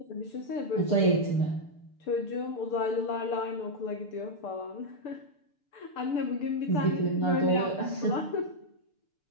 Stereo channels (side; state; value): right; late; 6.8 ms